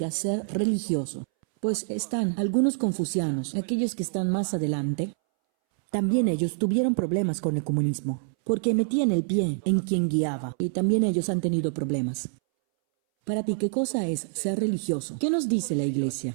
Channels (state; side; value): silent; left; 61 dB below the other